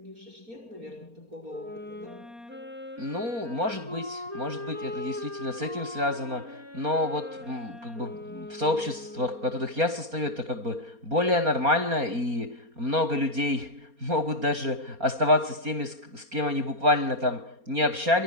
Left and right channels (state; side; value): late; left; 4.3 ms